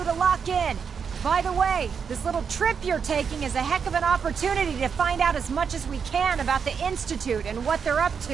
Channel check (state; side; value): quieter; left; 6.5 dB